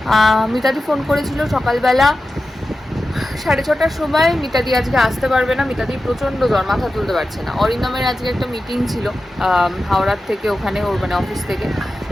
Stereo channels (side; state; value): both; normal; correlation 0.93